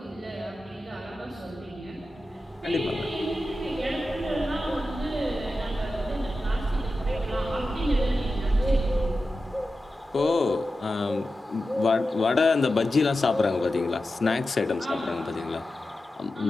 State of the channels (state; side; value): normal; both; correlation 0.92